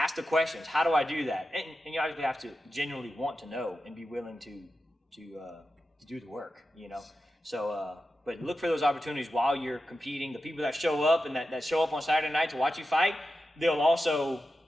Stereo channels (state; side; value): normal; both; correlation 0.91